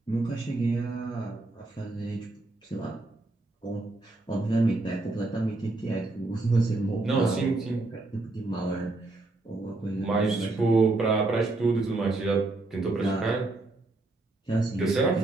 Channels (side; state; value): left; quieter; 3.0 dB